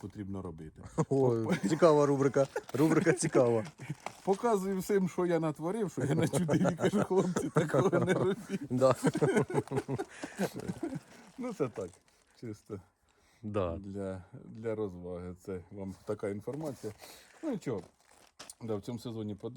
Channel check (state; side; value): identical; both; correlation 1.00